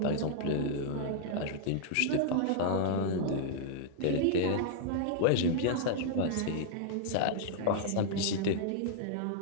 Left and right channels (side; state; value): both; different; correlation -0.01